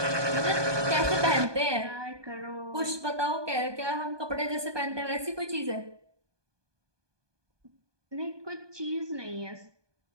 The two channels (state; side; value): late; left; 1.2 ms